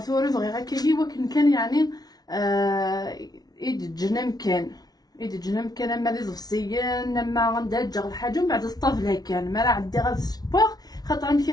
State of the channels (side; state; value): right; late; 0.19 ms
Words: بغي غير كيجي وكن كان يعني ايد جنم كان اما دي زفسيان اما غندجغ الحاجه ومن بعد الطفله كان ما راه عندي غير السبور خاطر ملي